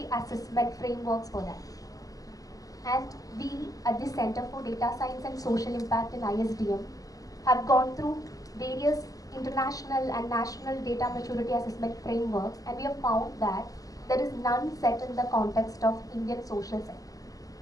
assessment frameworks for that. And we at the Center for Data Science and Social Impact in ISDM have gone through various international and national data maturity assessment frameworks, and we have found that there is none set in the context of Indian social sector.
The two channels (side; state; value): right; late; 0.17 ms